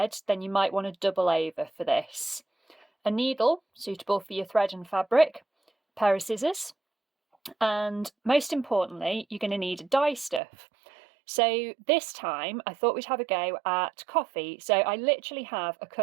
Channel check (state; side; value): drops out; left; at 10.4 s